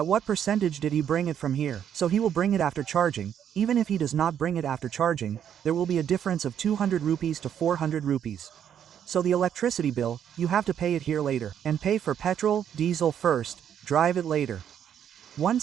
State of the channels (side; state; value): left; quieter; 9.2 dB